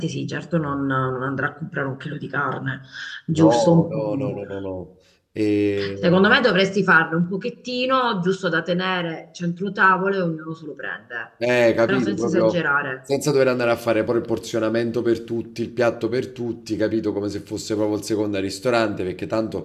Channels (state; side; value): identical; both; correlation 1.00